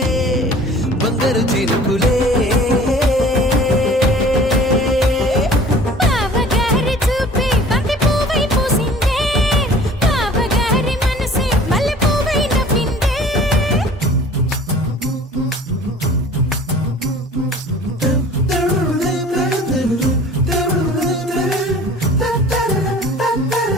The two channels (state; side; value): normal; both; correlation 0.47